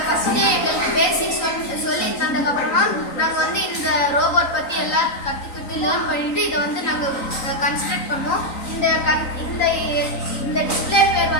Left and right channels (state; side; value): late; right; 3.9 ms